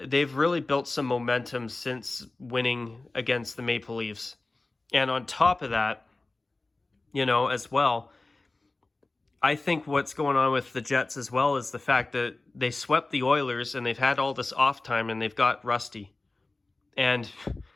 they've really built some momentum since winning against the Maple Leafs. And on top of that, as well, I think what's going on with the Jets as well is the fact that they swept the Oilers and they've had all this off time and they've got rusty. And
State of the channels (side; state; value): right; quieter; 3.2 dB